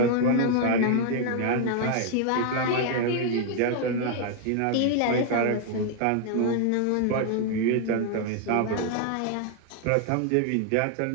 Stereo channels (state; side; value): different; both; correlation 0.00